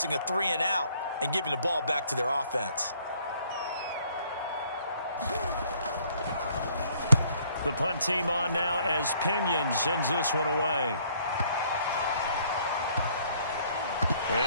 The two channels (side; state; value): both; inverted; correlation -0.63